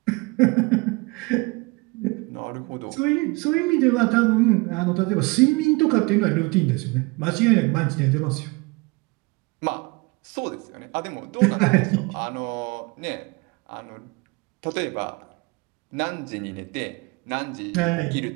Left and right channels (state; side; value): quieter; left; 26.2 dB